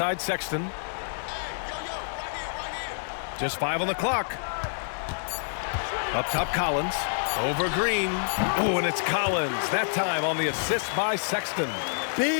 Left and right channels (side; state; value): right; silent; digital silence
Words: Sexton. Just 5 on the clock. Up top Collins. Over Green. Oh, and it's Collins. That time on the assist by Sexton.